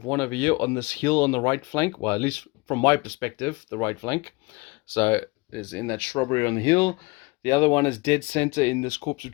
one over here on this hill on the right flank. Well, at least from my perspective, the right flank. So, there's in that shrubbery on the hill. The other one is dead center in this copse of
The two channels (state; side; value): quieter; right; 25.2 dB